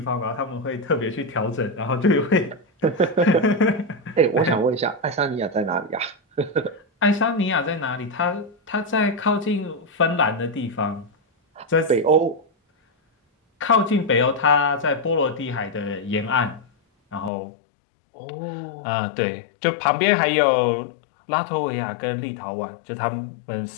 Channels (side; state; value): right; drops out; at 17.3 s